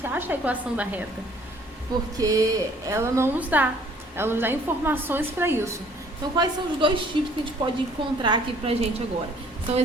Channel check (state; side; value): normal; both; correlation 0.58